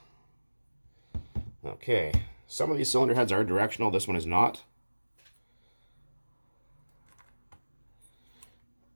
Okay. Some of these cylinder heads are directional. This one is not.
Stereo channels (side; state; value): both; inverted; correlation -1.00